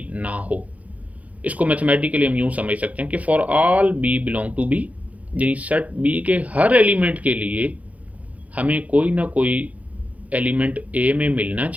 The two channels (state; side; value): late; left; 0.070 ms